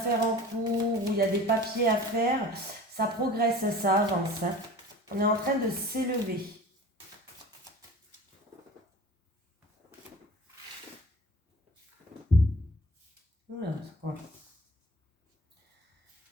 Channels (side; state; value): both; normal; correlation 0.41